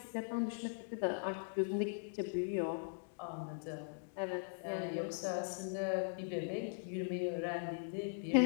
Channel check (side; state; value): right; silent; digital silence